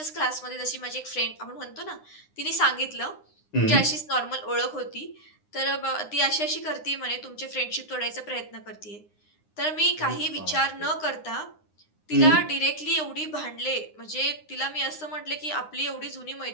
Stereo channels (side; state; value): right; late; 9.8 ms